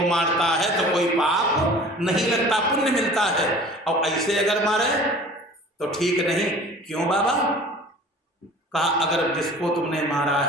मारता है तो कोई पाप नहीं लगता, पुण्य मिलता है, और ऐसे अगर मारे तो ठीक नहीं। क्यों बाबा? कहा अगर जिसको तुमने मारा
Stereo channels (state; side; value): normal; both; correlation 0.44